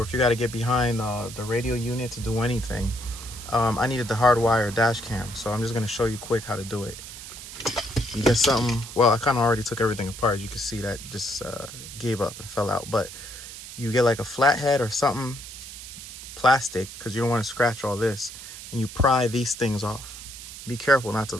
if you got to get behind the radio unit to do anything. I needed the hardwire dash cam, so I'm just going to show you quick how to do it. You get something, well, I kind of already took everything apart. You can see that just gave up and fell out. But you get like a flathead or something, plastic, because you don't want to scratch all this, and you pry these things off. Be careful not to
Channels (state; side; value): noise; right; hiss, 12 dB below the sound